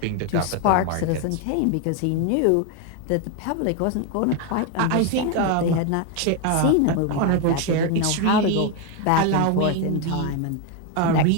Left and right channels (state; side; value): different; both; correlation 0.01